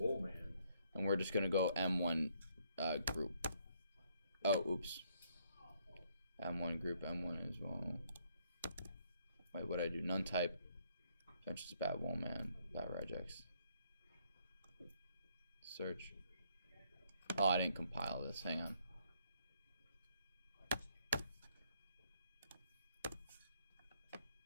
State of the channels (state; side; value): inverted; both; correlation -0.69